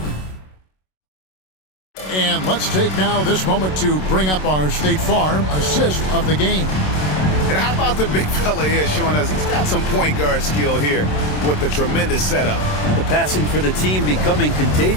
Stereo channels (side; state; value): right; late; 27 ms